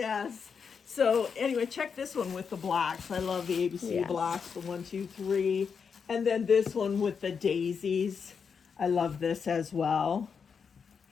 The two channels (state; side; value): quieter; right; 6.2 dB